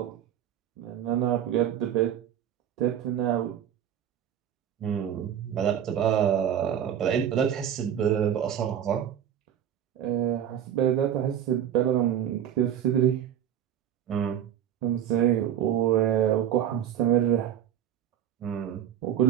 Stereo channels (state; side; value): quieter; left; 10.0 dB